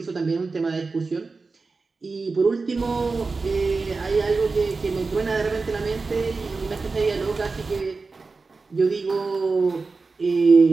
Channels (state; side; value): quieter; left; 4.1 dB